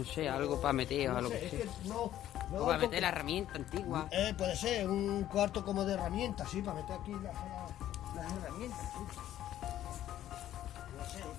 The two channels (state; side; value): quieter; right; 12.4 dB